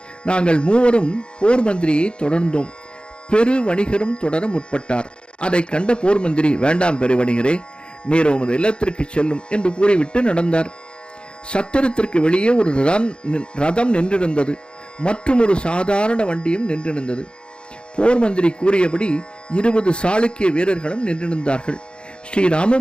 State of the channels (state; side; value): late; right; 0.054 ms